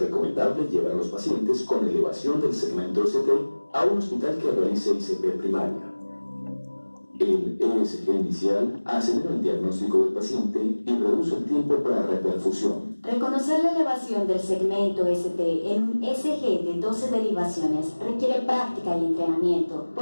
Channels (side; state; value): both; inverted; correlation -1.00